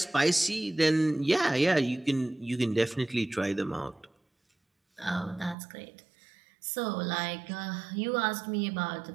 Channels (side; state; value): left; drops out; at 5.6 s